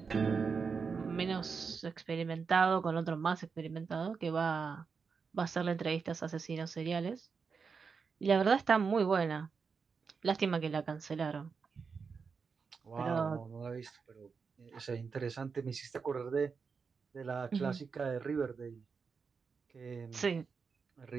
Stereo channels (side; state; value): left; quieter; 5.4 dB